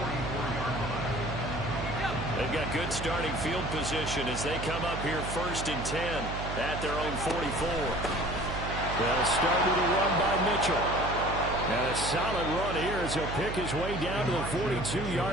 They've got good starting field position as they come up here 1st and 10 at their own 44. They'll start with a run by Mitchell. And a solid run here as he'll pick his way down to the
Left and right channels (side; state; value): right; noise; hum, 6 dB below the sound